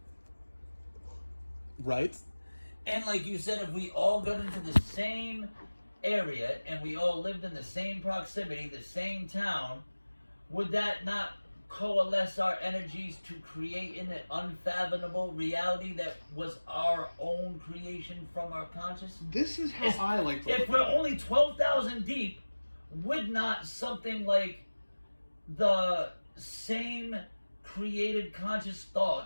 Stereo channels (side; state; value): both; inverted; correlation -1.00